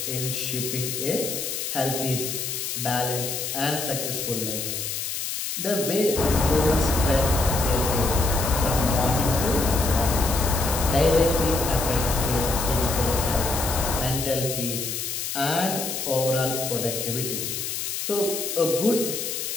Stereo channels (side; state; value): left; noise; hiss, 4 dB below the sound